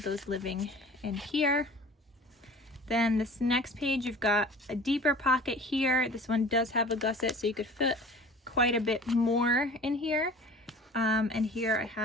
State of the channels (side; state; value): both; normal; correlation 0.43